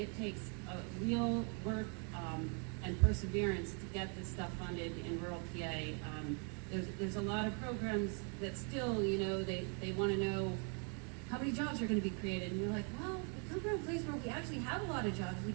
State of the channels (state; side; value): quieter; left; 38.0 dB